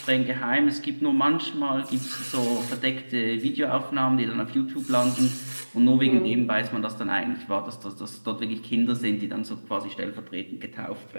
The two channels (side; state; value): both; inverted; correlation -1.00